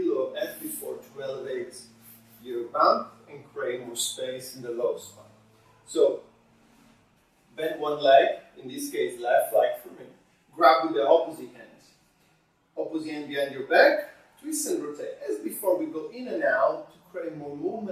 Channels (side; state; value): both; identical; correlation 1.00